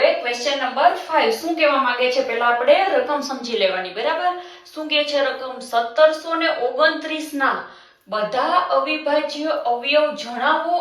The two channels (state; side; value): identical; both; correlation 1.00